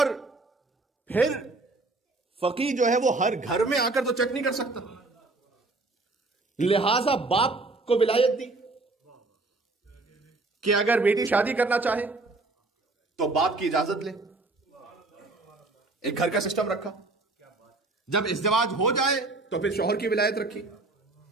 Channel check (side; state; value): left; quieter; 3.3 dB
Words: پھر فقیہ جو ہے وہ ہر گھر میں آ کر تو چیک نہیں کر سکتا، لہذا باپ کو ولایت دی کہ اگر بیٹی شادی کرنا چاہے تو باپ کی اجازت لے. ایک گھر کا سسٹم رکھا. جب ازدواج ہو جائے تو پھر شوہر کی ولایت رکھی.